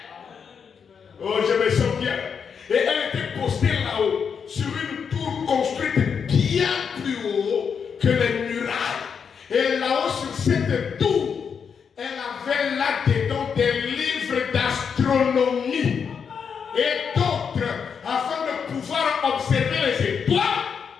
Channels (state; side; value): quieter; right; 6.6 dB